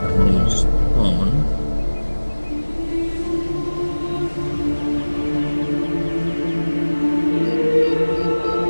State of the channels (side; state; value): both; inverted; correlation -1.00